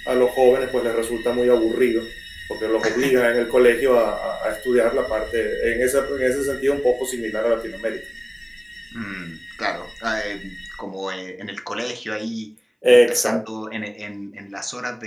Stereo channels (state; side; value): identical; both; correlation 1.00